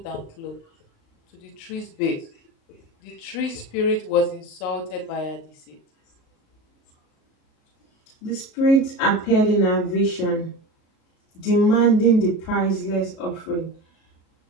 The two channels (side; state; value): right; late; 37 ms